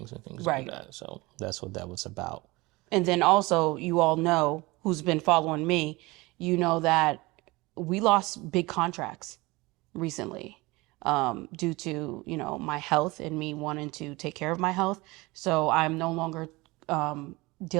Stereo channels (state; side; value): quieter; left; 22.6 dB